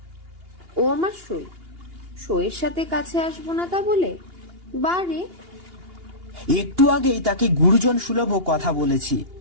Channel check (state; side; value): late; left; 2.8 ms